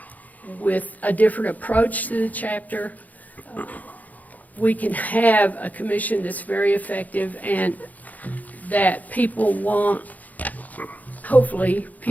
with a different approach to the chapter, we can have a commission that's very effective and that people won't, hopefully,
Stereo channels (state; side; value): late; right; 0.079 ms